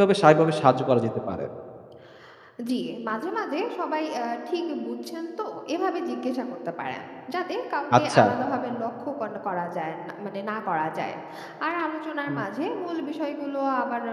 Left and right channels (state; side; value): identical; both; correlation 1.00